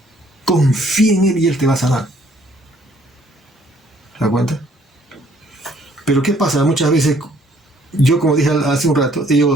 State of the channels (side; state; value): both; normal; correlation 0.63